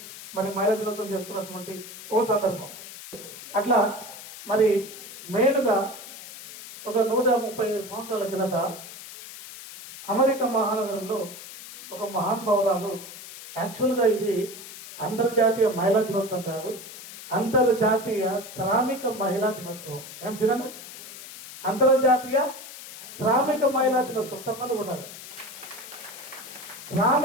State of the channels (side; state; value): left; noise; hiss, 14 dB below the sound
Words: మరి మహిళా దినోత్సవం చేసుకున్నటువంటి ఓ సందర్భం. అట్లా మరి మెయిన్గా ఒక 137 సంవత్సరాల కిందట అమెరికా మహానగరంలో ఒక మహానుభావురాలు, యాక్చువల్గా ఇది అంతర్జాతీయ మహిళా దినోత్సవం కాదు, అంతర్జాతీయ శ్రామిక మహిళా దినోత్సవం. ఏం సినిమా? అంతర్జాతీయ శ్రామిక మహిళా దినోత్సవం. సఫలు కూడా